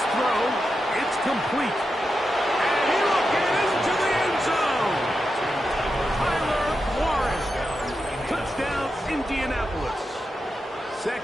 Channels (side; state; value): both; normal; correlation 0.88